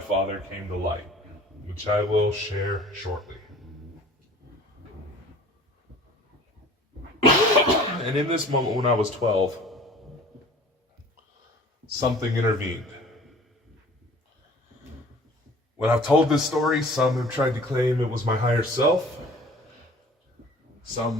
came to light, which I will share shortly. And in this moment when I was 12, something intervened. When I've told this story, some have tried to claim it was my higher self.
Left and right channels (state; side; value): normal; both; correlation 0.47